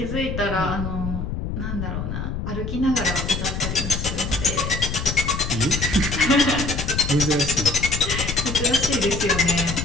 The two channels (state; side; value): noise; left; rumble, 4 dB below the sound